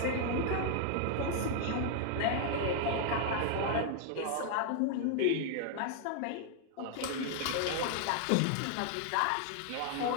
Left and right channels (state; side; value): different; both; correlation 0.00